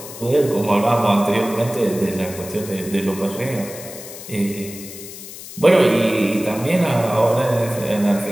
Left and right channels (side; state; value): left; noise; hiss, 13 dB below the sound